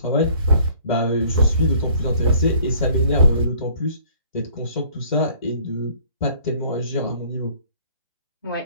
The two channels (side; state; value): both; inverted; correlation -0.56